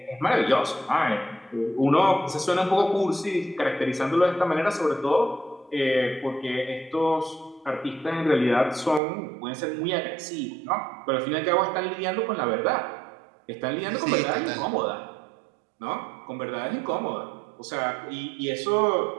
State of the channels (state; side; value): drops out; left; at 9.0 s